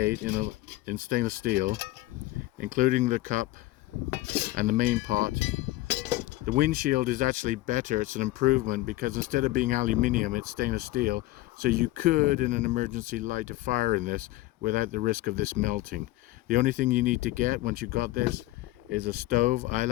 in stainless steel, including the cup and the main pot. The windshield is actually better. It's an improvement because instead of being aluminium, it's stainless steel. So you could, in an emergency, light a fire in this without the risk of this melting. The only thing you need to get once you've got this is a stove. I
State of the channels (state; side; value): quieter; right; 17.8 dB